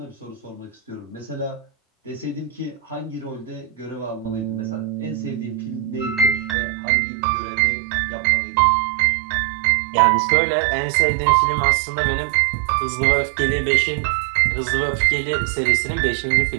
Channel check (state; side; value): drops out; left; at 6.6 s